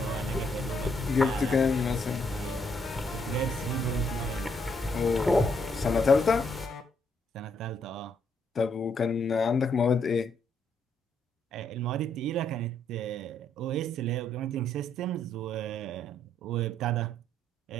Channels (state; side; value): normal; both; correlation 0.73